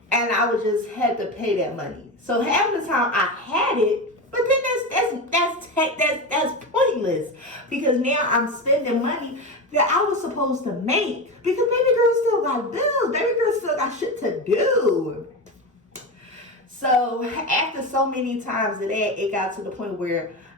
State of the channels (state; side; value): normal; both; correlation 0.20